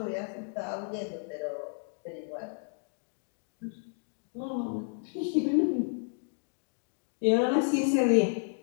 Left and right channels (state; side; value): silent; right; digital silence